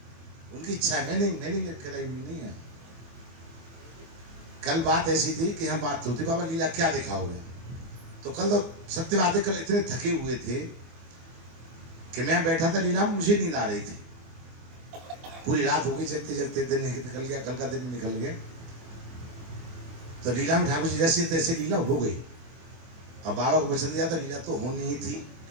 उनकी इच्छा है, मैंने कराई हुई नहीं है। कल बात ऐसी थी कि हम बात होती बाबा लीला क्या दिखाओगे, तो कल तो सत्य बातें कल इतने थके हुए थे कि मैं बैठा था लीला में, मुझे नींद आ रही थी। पूरी रात हो गई, जगते जगते दिन निकल गया, कल का दिन निकल गया। तो लीला में ठाकुर जी जैसे तैसे लीला हो गई। अब बाबा को वचन दिया था लीला तो होनी ही थी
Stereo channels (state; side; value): late; left; 24 ms